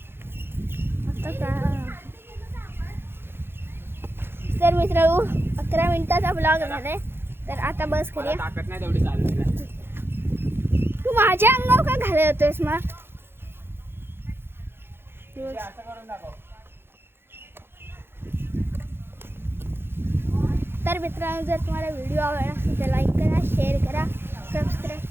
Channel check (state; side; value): late; left; 0.11 ms